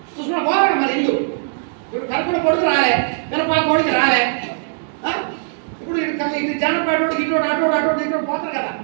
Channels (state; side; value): silent; left; digital silence